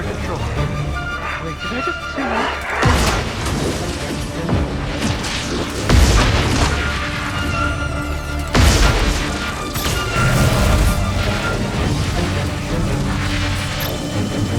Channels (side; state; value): both; identical; correlation 1.00